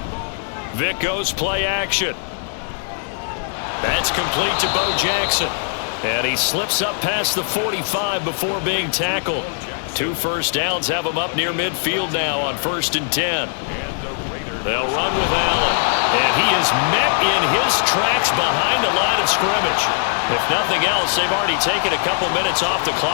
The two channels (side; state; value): right; silent; digital silence